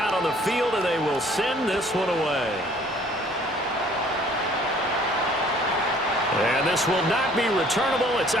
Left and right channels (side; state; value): both; normal; correlation 0.56